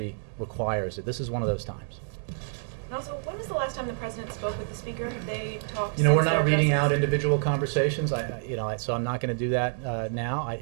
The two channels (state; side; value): silent; left; digital silence